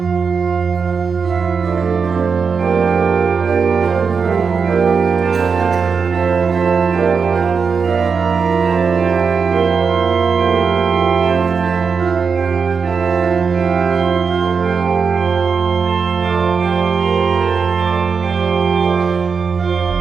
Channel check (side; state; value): left; quieter; 5.5 dB